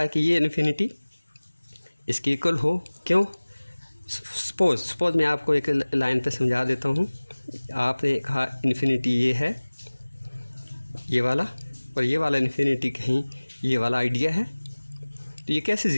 कि ये इन्फिनिटी इसके इक्वल हो। क्यों? सपोज़ मैं आपको एक लाइन पे समझा देता हूँ। आपने कहा इन्फिनिटी ये है, ये वाला, और ये वाला इन्फिनिटी कहीं ये वाला आइडिया है, तो ये कैसे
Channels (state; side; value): inverted; both; correlation -1.00